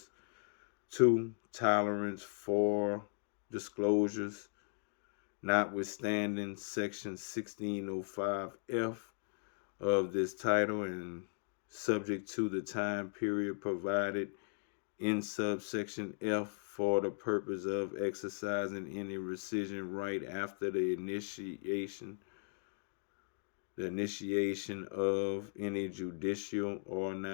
2. Tolerance for disclosures. Notwithstanding Section 1605F of this title and subject to the time period provided in subsection F for the purpose of exercising any rescission right after the initiation of any judicial or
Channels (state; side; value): silent; right; digital silence